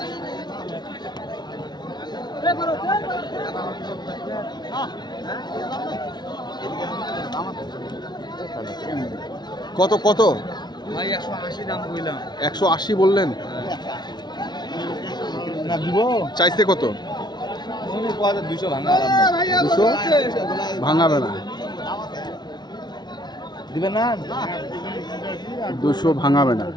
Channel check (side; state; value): right; late; 0.20 ms